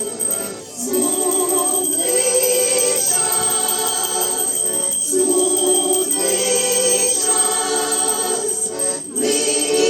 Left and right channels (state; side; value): identical; both; correlation 1.00